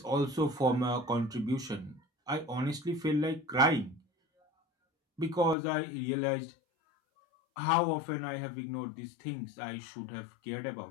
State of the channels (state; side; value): drops out; right; at 5.6 s